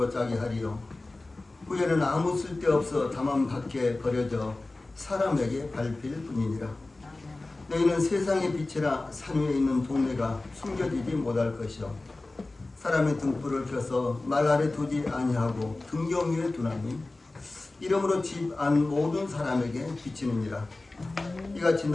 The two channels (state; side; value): quieter; right; 3.1 dB